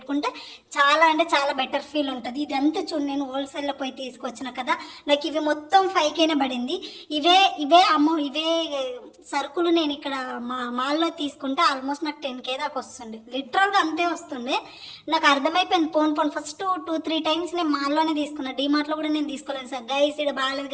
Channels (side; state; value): both; identical; correlation 1.00